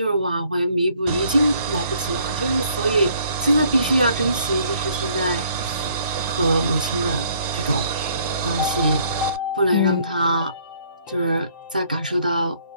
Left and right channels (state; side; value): inverted; both; correlation -0.63